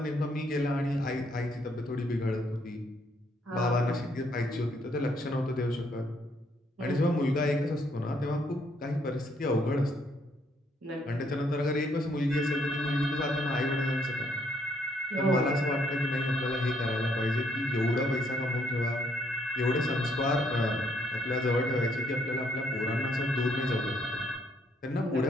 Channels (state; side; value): normal; both; correlation 0.70